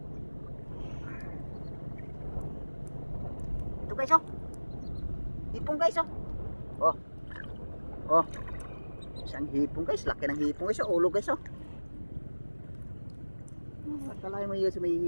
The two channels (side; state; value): both; inverted; correlation -1.00